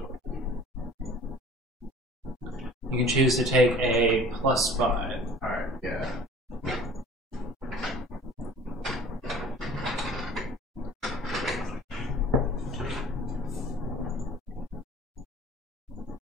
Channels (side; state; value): both; normal; correlation 0.47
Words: You can choose to take a +5. Alright, yeah.